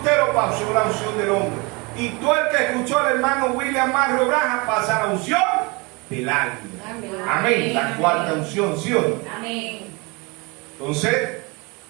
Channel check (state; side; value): quieter; left; 27.6 dB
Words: pasó la unción del hombre. Y todo el que escuchó al hermano William Mario Branham pasa la unción del águila. Amén. Amén. La cuarta unción, ¿sí o no? Amén. Entonces,